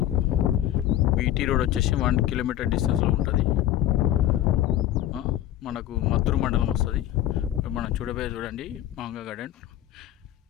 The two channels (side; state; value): right; quieter; 12.8 dB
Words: BT road వచ్చేసి 1 kilometer డిస్టెన్స్లో ఉంటుంది. మనకు మద్దూరు మండలం వస్తుంది. మనం చూడండి మ్యాంగో గార్డెన్.